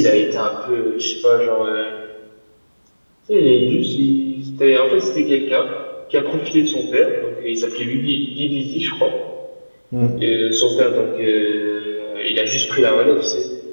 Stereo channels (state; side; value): inverted; both; correlation -1.00